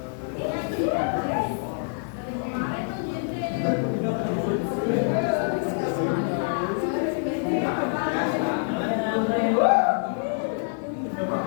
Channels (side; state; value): right; silent; 61 dB below the other